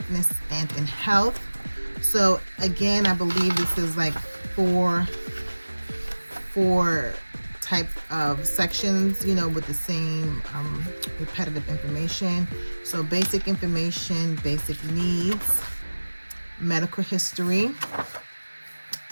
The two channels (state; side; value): inverted; both; correlation -1.00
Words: and in Health. So again, I believe this is like four type of sections, with the same repetitive information. So basic information, basic needs, medical history,